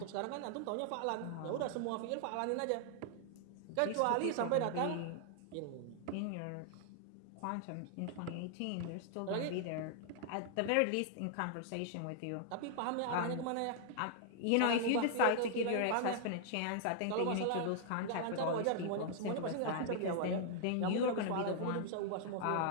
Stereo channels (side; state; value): both; different; correlation -0.01